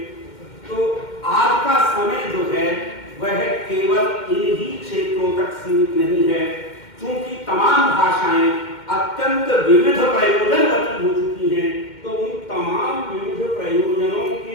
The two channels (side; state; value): right; late; 2.1 ms